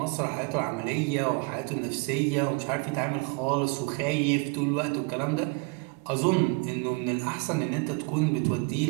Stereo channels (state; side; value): quieter; left; 29.4 dB